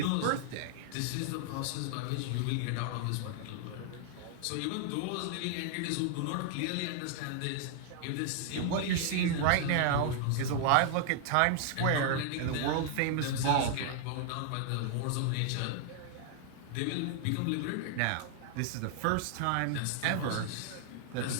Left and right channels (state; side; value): different; both; correlation 0.00